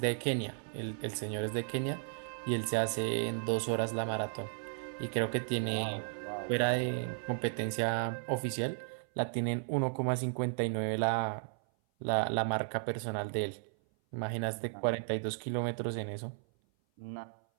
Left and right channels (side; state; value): left; silent; 55 dB below the other